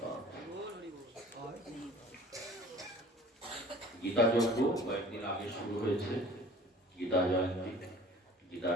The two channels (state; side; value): normal; both; correlation 0.47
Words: গীতা যজ্ঞ কয়েকদিন আগে শুরু হয়েছে। গীতা জয়ন্তী,